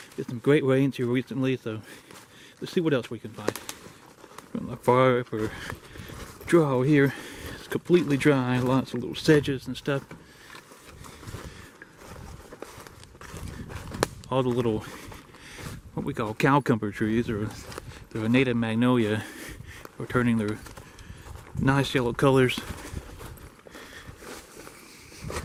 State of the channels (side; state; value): both; identical; correlation 1.00